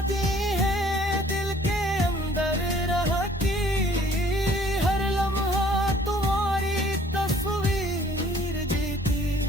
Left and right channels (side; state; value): both; normal; correlation 0.57